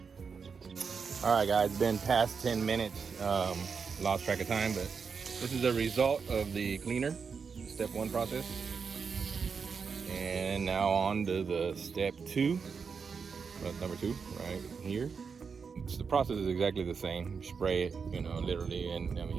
Alright guys, it's been past 10 minutes. Lost track of time, but this is the result of the cleaner, step 1 process. And now on to the step 2. Number 2, right here. The process is exactly the same. Spray it, you know, literally, and I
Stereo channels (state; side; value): quieter; left; 5.7 dB